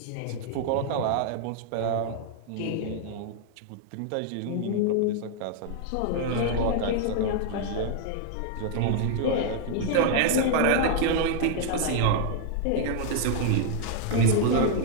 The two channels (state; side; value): different; both; correlation 0.00